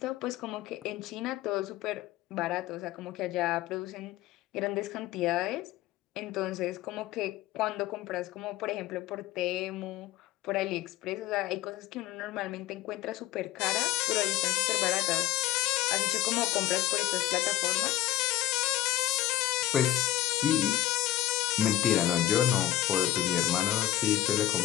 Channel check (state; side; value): quieter; right; 14.4 dB